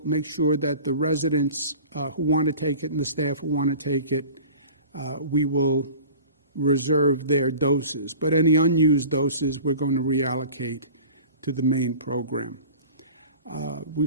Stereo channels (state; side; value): inverted; both; correlation -0.40